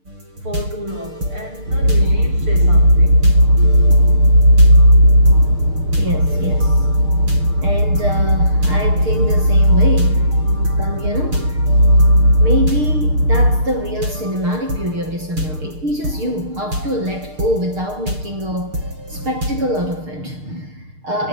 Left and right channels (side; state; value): left; late; 6.6 ms